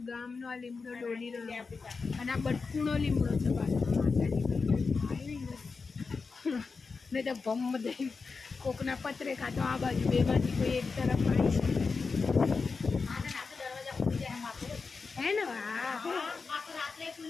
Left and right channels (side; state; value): right; quieter; 4.6 dB